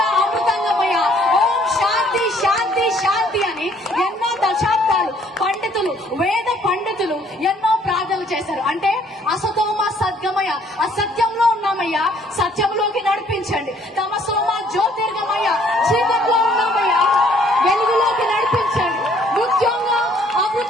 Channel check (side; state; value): both; normal; correlation 0.62